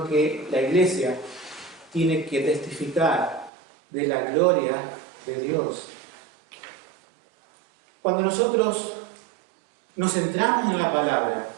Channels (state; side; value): drops out; left; at 3.5 s